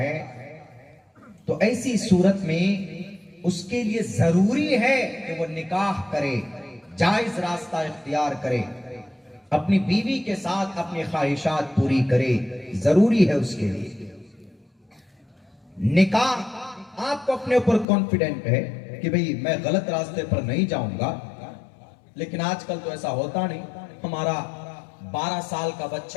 तो ऐसी सूरत में उसके लिए जरूरी है कि वो निकाह करे, जायज रास्ता इख्तियार करे, अपनी बीवी के साथ अपनी ख्वाहिशात पूरी करे, जरूरी है उसके लिए निकाह। आपको अपने ऊपर कॉन्फिडेंट है कि भाई मैं गलत रास्ते पर नहीं जाऊंगा, लेकिन आजकल तो ऐसा होता नहीं। हमारा 12 साल का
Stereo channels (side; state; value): right; drops out; at 17.9 s